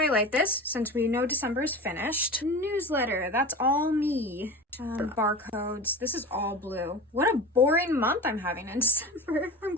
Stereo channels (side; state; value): both; normal; correlation 0.32